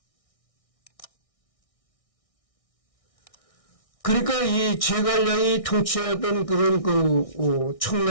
그러니까 이 제갈량이 통치하던 그런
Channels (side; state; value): right; late; 1.6 ms